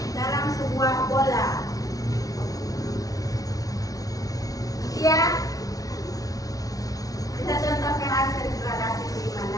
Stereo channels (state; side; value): late; right; 0.18 ms